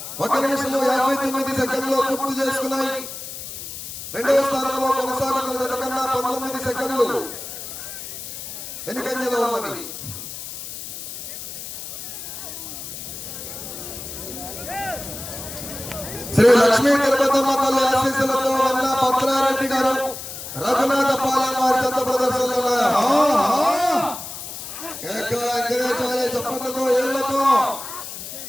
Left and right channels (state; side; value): noise; left; hiss, 9 dB below the sound